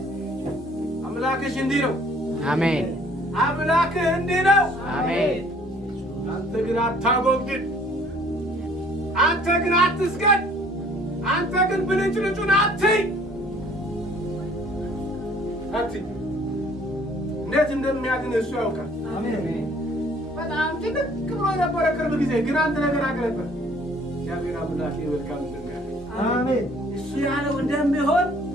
አምላክሽ እንዲህ ነው። አሜን። አምላክህ እንዲህ ነው። አሜን። አንተ ግን አታጎብድድ። አንተ ግን አትስገድ። አንተ ግን ብልጭልጩን አትይ። እንዴት እንደሚያድን እሱ ያውቃል። በጣም ጭንቅ ብሎ ነበረ ቅርብ ጊዜ፣ ግን አንድ ነገር አገለበት። እግዚአብሔር አምላኬ መልካም እንደሚያደርግ አሜን። እሱ ያለው እንደሚሆን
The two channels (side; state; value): both; normal; correlation 0.57